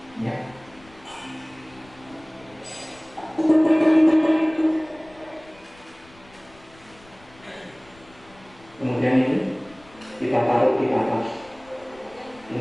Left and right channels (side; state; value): left; noise; rumble, 26 dB below the sound